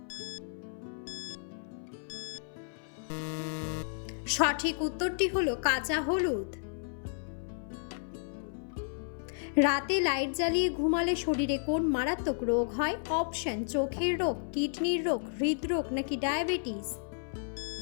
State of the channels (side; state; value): right; silent; 56 dB below the other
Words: সঠিক উত্তরটি হলো কাঁচা হলুদ। রাতে লাইট জ্বালিয়ে ঘুমালে শরীরে কোন মারাত্মক রোগ হয়? অপশন: চোখের রোগ, কিডনির রোগ, হৃদরোগ নাকি ডায়াবেটিস?